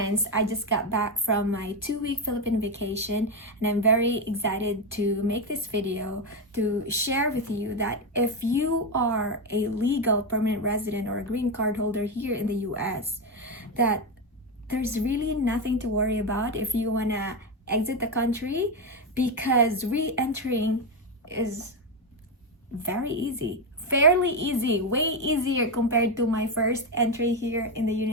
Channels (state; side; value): normal; both; correlation 0.09